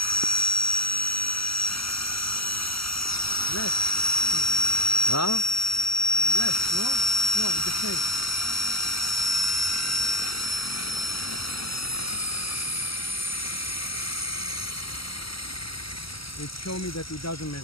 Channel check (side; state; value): right; late; 0.75 ms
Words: Yes. Huh? Yes, no? No, the same. It showed me that it doesn't